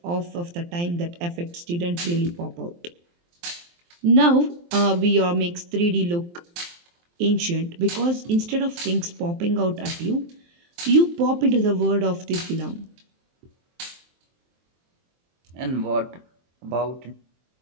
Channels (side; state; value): left; late; 23 ms